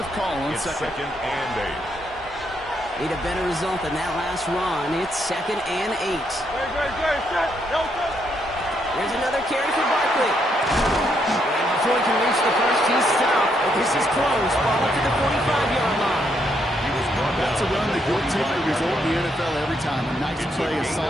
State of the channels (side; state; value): both; normal; correlation 0.76